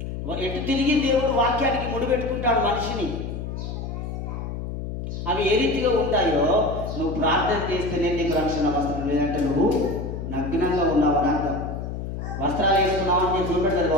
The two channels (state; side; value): noise; left; hum, 6 dB below the sound